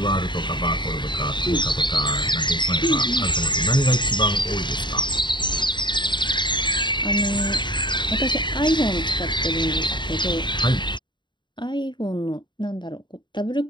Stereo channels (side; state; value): right; late; 0.22 ms